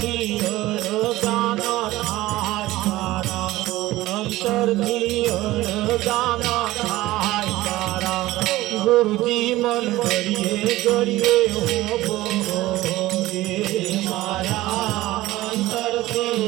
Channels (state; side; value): quieter; left; 17.3 dB